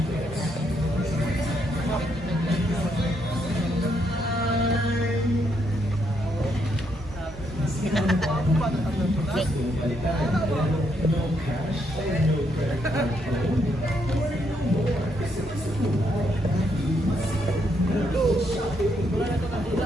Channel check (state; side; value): normal; both; correlation 0.76